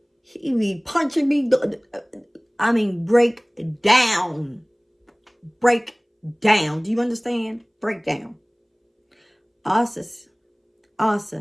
he be punching me. I mean, break down. Break down. Do you understand? Break down. Asa,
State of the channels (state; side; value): identical; both; correlation 1.00